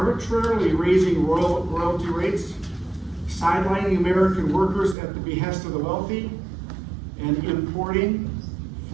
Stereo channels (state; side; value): drops out; left; at 5.0 s